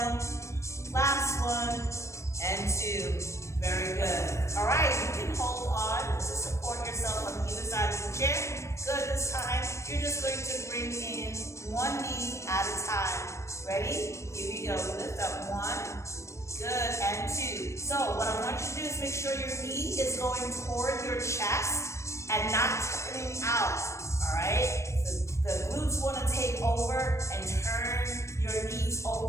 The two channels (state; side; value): late; right; 0.14 ms